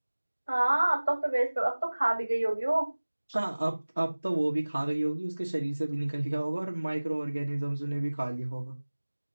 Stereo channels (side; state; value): both; inverted; correlation -1.00